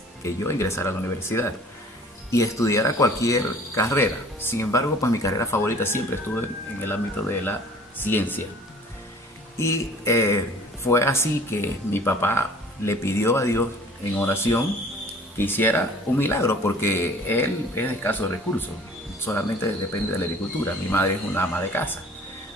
que yo ingresara a la universidad y estudiara cualquier carrera. Sin embargo, pues mi carrera favorita siempre estuvo en el ámbito de la ciencia. Y fue así que mi papá le pidió a Dios en oración que hiciera un milagro, porque él es de escasos recursos, solamente depende de la agricultura. Mi madre es una ama de casa.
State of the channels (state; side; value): normal; both; correlation 0.49